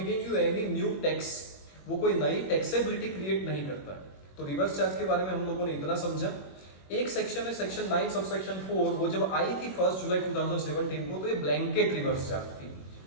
you any new tax, वो कोई नई टैक्सेबिलिटी क्रिएट नहीं करता है। तो रिवर्स चार्ज के बारे में हम लोगों ने इतना समझा। एक सेक्शन है सेक्शन 9 सबसेक्शन 4, वो जब आई थी 1 जुलाई 2017 को तो ये ब्लैंकेट रिवर्स चार्ज थी।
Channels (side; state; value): right; late; 21 ms